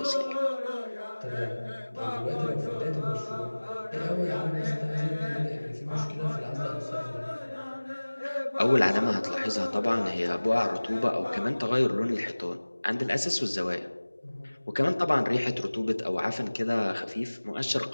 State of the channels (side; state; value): both; inverted; correlation -1.00